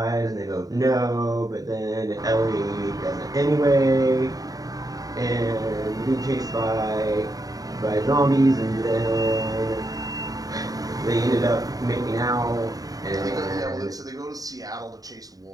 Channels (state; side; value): late; left; 0.18 ms